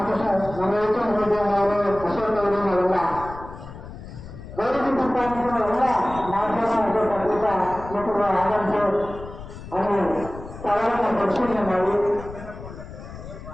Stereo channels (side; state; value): left; noise; rumble, 13 dB below the sound